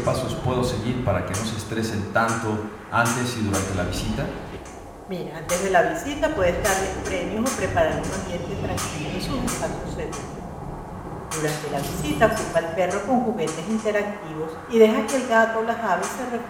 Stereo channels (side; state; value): both; identical; correlation 1.00